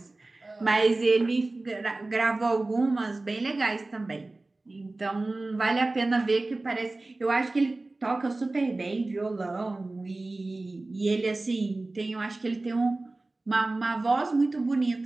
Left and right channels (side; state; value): left; quieter; 3.1 dB